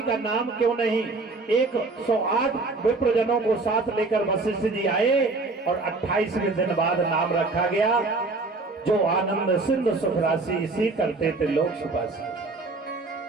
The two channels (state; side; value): quieter; left; 3.6 dB